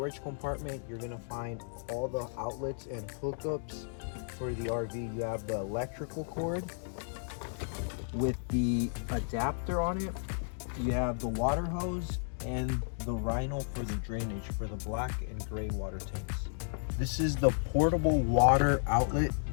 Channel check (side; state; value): right; silent; digital silence